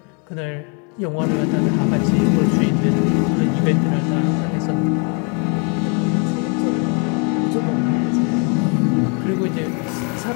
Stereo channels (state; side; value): quieter; right; 35.7 dB